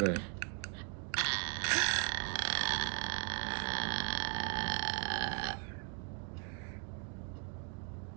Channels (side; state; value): left; quieter; 38.4 dB